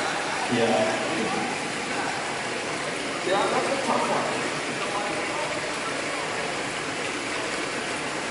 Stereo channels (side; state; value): both; identical; correlation 1.00